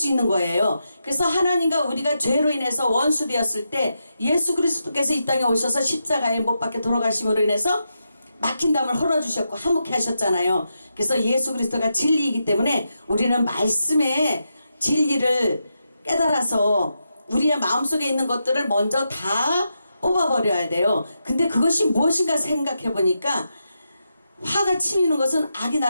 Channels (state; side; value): inverted; both; correlation -0.86